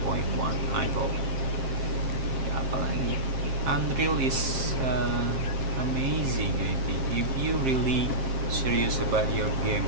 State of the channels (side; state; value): left; late; 7.5 ms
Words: I hope. Ya, apalagi Unreal is amazing. I think if you really serious about your